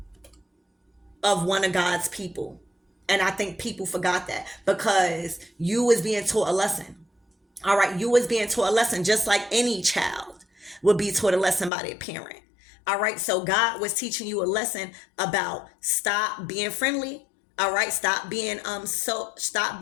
of one of God's people. And I think people forgot that because you was being taught a lesson. All right, you was being taught a lesson just like any child would be taught a lesson by their parent. All right, so God was teaching you a lesson about stop being friendly. All right, stop being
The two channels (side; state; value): right; drops out; at 11.7 s